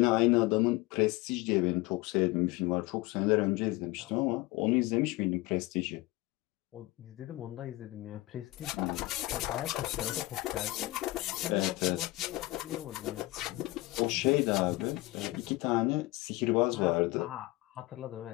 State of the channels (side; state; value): right; quieter; 20.4 dB